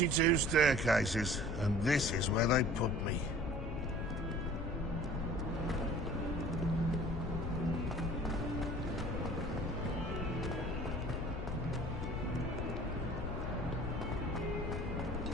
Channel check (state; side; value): noise; left; rumble, 3 dB below the sound